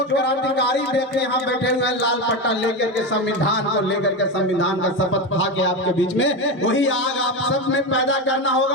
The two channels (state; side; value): normal; both; correlation 0.17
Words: क्रांतिकारी व्यक्ति यहाँ बैठे हुए हैं लाल पट्टा लेकर के, संविधान को लेकर के, संविधान का शपथ खा के आपके बीच में, वही आग आप सब में पैदा करना